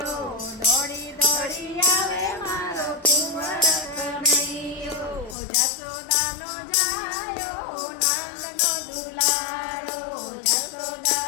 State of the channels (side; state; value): right; drops out; at 5.4 s